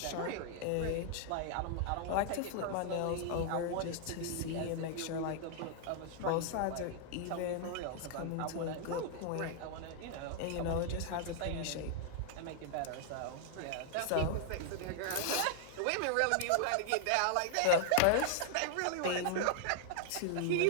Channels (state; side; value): different; both; correlation 0.00